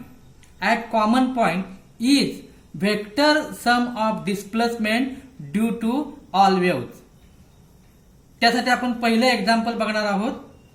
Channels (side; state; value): both; identical; correlation 1.00